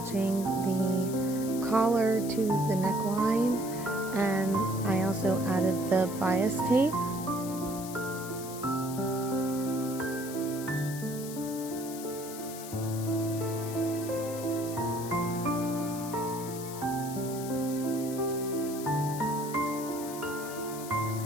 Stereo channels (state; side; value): noise; left; hiss, 12 dB below the sound